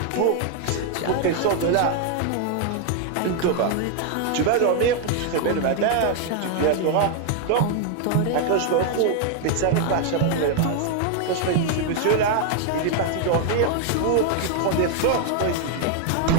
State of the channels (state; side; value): different; both; correlation 0.00